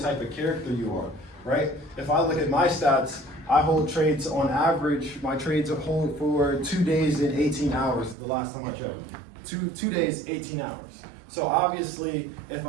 type of character you are, right? If I look at my stats, I hold trades on average, my trades hold for 2 days and 18 hours the last time I checked. Two days, 18 hours. So obviously, if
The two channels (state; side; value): drops out; left; at 8.2 s